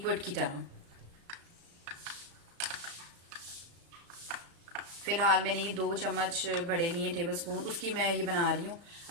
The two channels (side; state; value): left; late; 35 ms